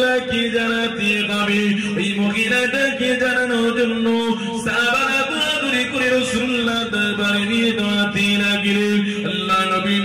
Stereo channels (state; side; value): identical; both; correlation 1.00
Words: জানাতে হবে? ওই মহিলাটাকে জানানোর জন্য সাহাবারা দৌড়াদৌড়ি করে রাসূলুল্লাহ দরবারে নিয়ে দাঁড়াতে লাগলেন। আল্লাহ